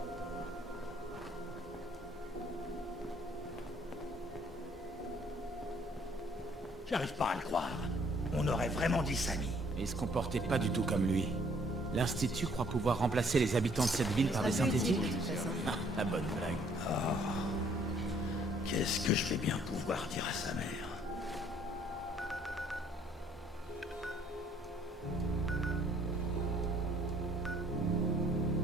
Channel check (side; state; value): both; normal; correlation 0.62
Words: J'arrive pas à le croire. On aurait vraiment dit Samy. Il se comportait pas du tout comme lui. L'Institut croit pouvoir remplacer les habitants de cette ville par des synthétiques? Ah, la bonne blague. Oh. Qu'est-ce que je vais bien pouvoir dire à sa mère?